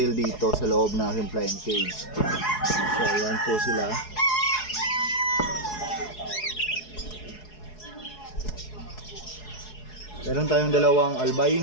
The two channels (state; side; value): late; right; 4.7 ms